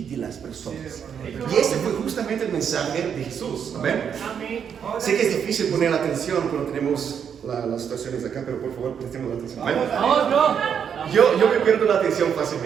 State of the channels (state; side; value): quieter; left; 7.7 dB